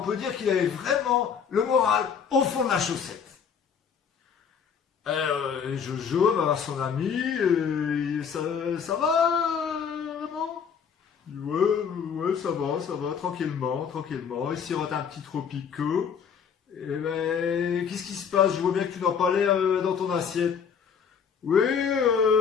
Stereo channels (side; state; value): right; quieter; 7.0 dB